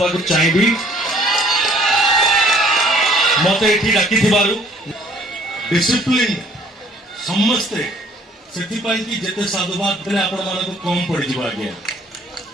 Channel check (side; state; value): both; normal; correlation 0.58